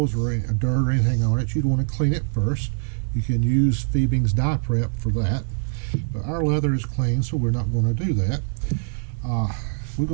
or any dirt or anything on it, you'd want to clean it first. You can use Fiebing's Dye Prep for that. But our leather is clean, so we're not going to do that.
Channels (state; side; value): silent; left; digital silence